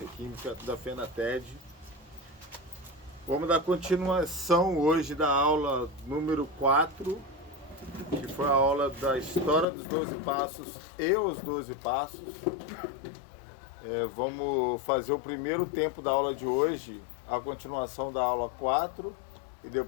química da FENATED. Vamos dar continuação hoje da aula número 4, que foi a aula da história dos 12 passos e os 12 passos. Vamos fazer o primeiro tempo da aula de hoje, a continuação da aula 4, e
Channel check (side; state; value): right; drops out; at 9.7 s